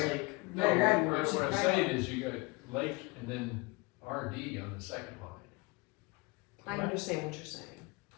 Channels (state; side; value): quieter; right; 26.4 dB